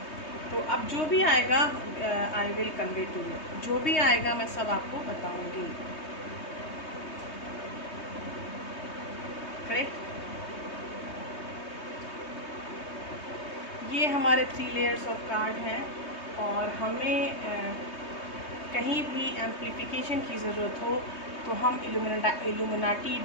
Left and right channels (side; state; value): right; late; 3.2 ms